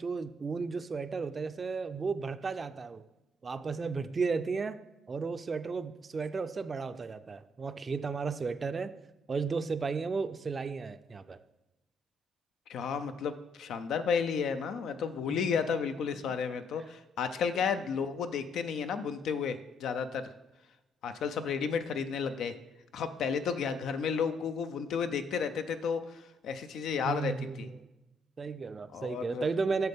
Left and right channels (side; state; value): both; normal; correlation 0.70